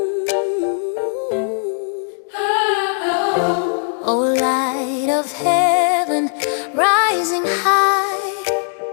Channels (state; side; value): silent; right; digital silence